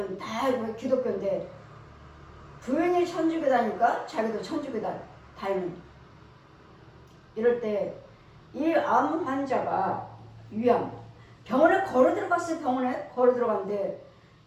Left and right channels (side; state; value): both; identical; correlation 1.00